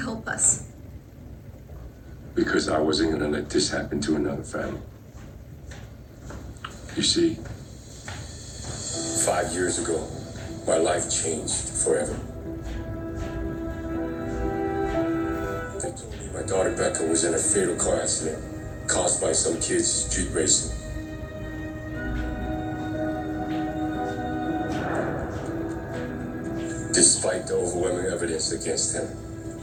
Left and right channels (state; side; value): identical; both; correlation 1.00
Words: us? Because I wasn't gonna let this happen to another family. You see, 5 years ago, my life changed forever. They told me my daughter Becca was in a fatal car accident caused by some kids street racing. Despite the overwhelming evidence against him,